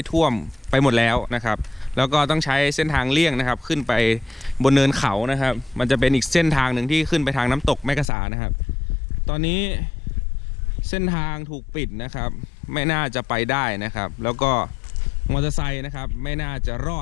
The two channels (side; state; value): right; drops out; at 8.1 s